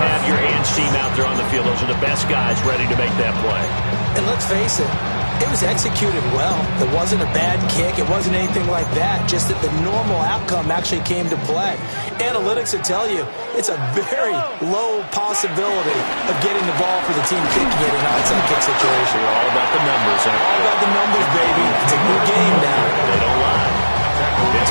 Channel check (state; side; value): inverted; both; correlation -1.00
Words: your hands team out there on the field. Those are the best guys ready to make that play. And let's face it, it was executed well. It wasn't a bad kick. It wasn't anything like that. Just that the normal outcome actually came to play. Analytics will tell you it's a very low possibility of getting the ball for the team kicking it in an onside kick situation. We're all about the numbers. All about the numbers, baby. It's a new game now. They don't lie.